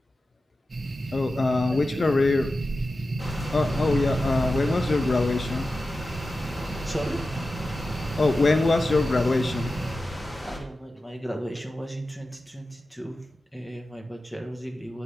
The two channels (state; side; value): normal; both; correlation 0.93